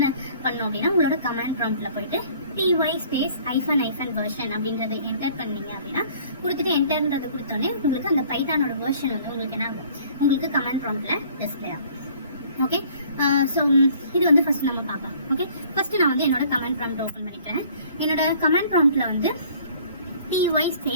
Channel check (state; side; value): inverted; both; correlation -0.54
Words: பண்ணணும் அப்படின்னா உங்களோட கமாண்ட் ப்ராம்ப்டில் போயிட்டு py_version அப்படின்றத என்டர் பண்ணீங்க அப்படின்னா கொடுத்துட்டு என்டர்ன்றது கொடுத்தோன்னே உங்களுக்கு அந்த பைத்தானோட வெர்ஷன் வந்து உங்களுக்கு என்ன ஆகும், உங்களுக்கு கமாண்ட் ப்ராம்ப்டில் டிஸ்பிளே ஆகும். ஓகே, ஸோ இது வந்து ஃபர்ஸ்ட் நம்ம பார்க்கலாம். ஓகே, ஃபர்ஸ்ட் நான் வந்து என்னோட கமாண்ட் ப்ராம்ப்ட் ஓப்பன் பண்ணிக்கிறேன். என்னோட கமாண்ட் ப்ராம்ப்டில் வந்து